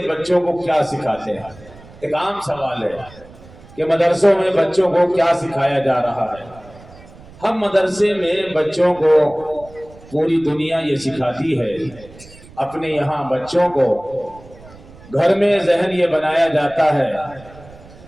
بچوں کو کیا سکھاتے ہیں؟ ایک عام سوال ہے کہ مدرسوں میں بچوں کو کیا سکھایا جا رہا ہے؟ ہم مدرسے میں بچوں کو، پوری دنیا یہ سکھاتی ہے، اپنے یہاں بچوں کو گھر میں ذہن یہ بنایا جاتا ہے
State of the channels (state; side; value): noise; right; rumble, 21 dB below the sound